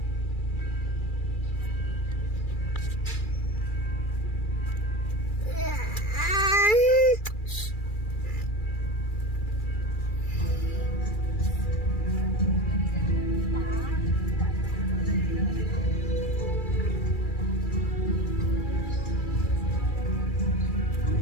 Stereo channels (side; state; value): right; late; 2.3 ms